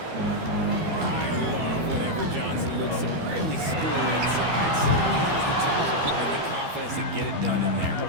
I love whenever Johnson looks to really score inside. Certainly has the touch and the confidence to get it done in there.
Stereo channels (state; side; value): late; left; 12 ms